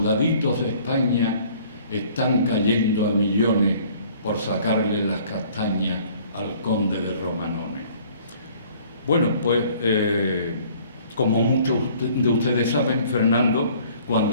de España están cayendo a millones por sacarle las castañas al conde de Romanones. Bueno, pues como muchos de ustedes saben, Fernando,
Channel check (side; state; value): both; inverted; correlation -0.55